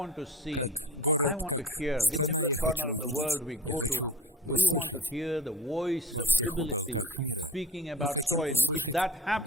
как город, как страна я хочу увидеть, я хочу услышать во всех уголках мира. Мы хотим услышать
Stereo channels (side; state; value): both; normal; correlation 0.38